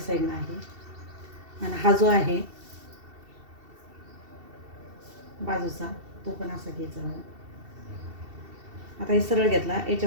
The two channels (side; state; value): left; late; 2.7 ms